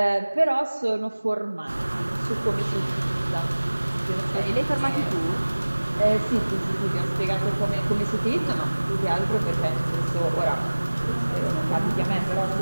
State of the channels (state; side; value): inverted; both; correlation -1.00